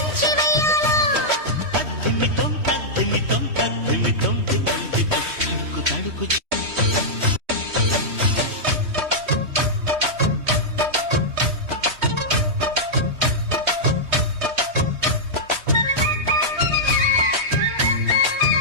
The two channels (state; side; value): late; left; 3.1 ms